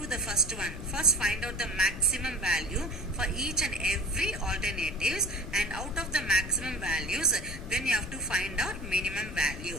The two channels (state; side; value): noise; left; rumble, 10 dB below the sound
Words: the first one. First find out the maximum value for each and every alternatives, and out of the maximum values, then you have to find out minimum